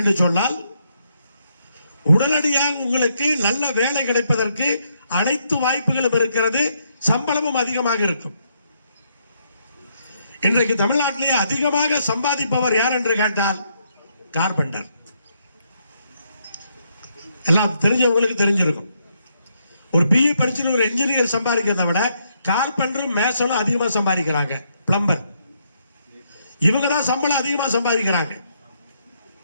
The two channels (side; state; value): both; inverted; correlation -0.75